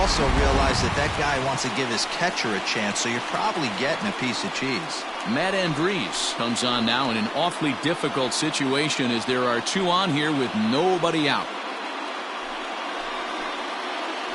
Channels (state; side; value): identical; both; correlation 1.00